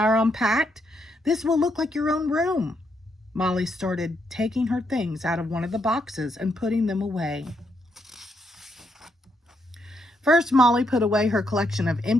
unpacked, this will look like your own room. Molly started taking her things out of one of the boxes and putting them away. First, Molly put away her collection of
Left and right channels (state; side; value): normal; both; correlation 0.77